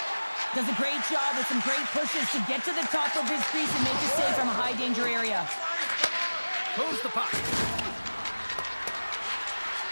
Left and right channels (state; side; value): inverted; both; correlation -1.00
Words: Does a great job with some great pushes to get to the top of his crease and make a save from a high-danger area. Moves the puck.